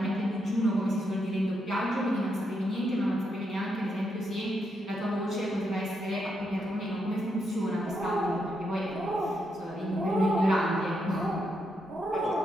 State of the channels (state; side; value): normal; both; correlation 0.81